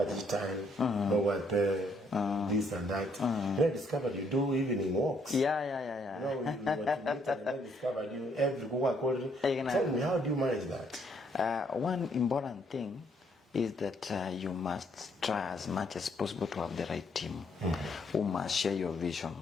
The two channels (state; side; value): normal; both; correlation 0.69